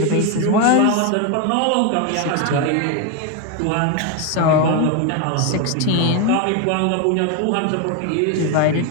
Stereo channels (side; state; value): both; different; correlation 0.02